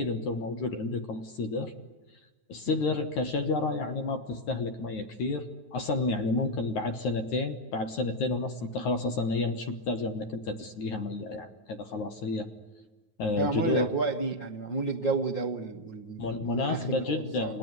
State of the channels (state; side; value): late; right; 9.4 ms